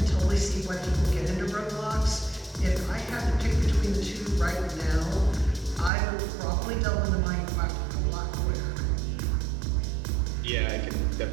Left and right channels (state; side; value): drops out; left; at 5.9 s